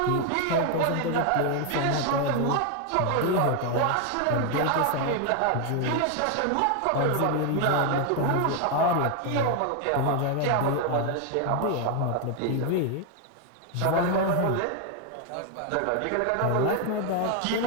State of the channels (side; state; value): both; different; correlation 0.01